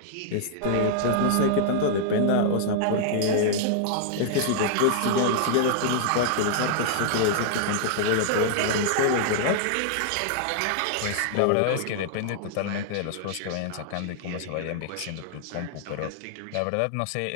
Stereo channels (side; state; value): both; different; correlation -0.01